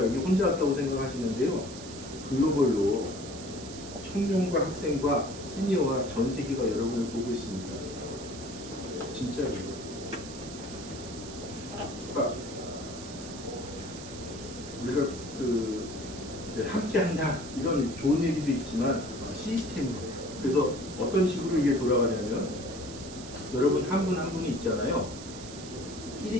여기 혼자 왔다고 생각하시는데요. 글로벌로 청년과 학생과 시니어와 전 세계가 여러분을 보고 있습니다. 진짜예요. 그러니까 우리가 그 이제 함께한다 이런 좋은 얘기도 있지만 시스템이에요. 그래서 어떤 식으로 이게 돌아가냐면 여러분 한 분 한 분이 있잖아요.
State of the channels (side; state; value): right; noise; hiss, 14 dB below the sound